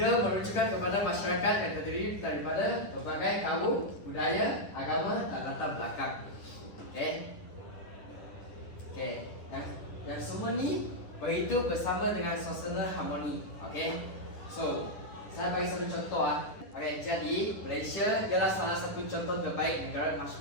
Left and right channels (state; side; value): late; right; 10 ms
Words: merujukan kepada masyarakat yang terdiri daripada berbagai kaum, budaya, agama dan latar belakang. Yang semua ni berhidup bersama dengan suasana harmoni. So, saya bagi satu contoh jadi Malaysia ialah salah satu contoh terbaik negara